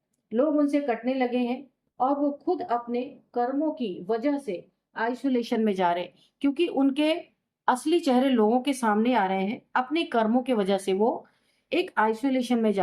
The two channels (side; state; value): both; identical; correlation 1.00